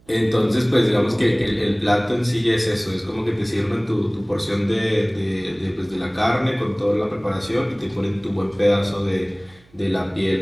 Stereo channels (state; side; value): noise; right; hum, 30 dB below the sound